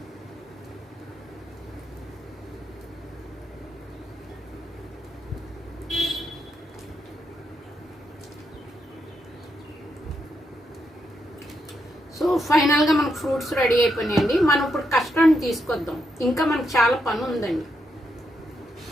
సో ఫైనల్గా మనకు ఫ్రూట్స్ రెడీ అయిపోయినాయండి. మనం ఇప్పుడు కస్టర్డ్ తీసుకొద్దాం, ఇంకా మనకు చాలా పని ఉందండి.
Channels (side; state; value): both; normal; correlation 0.81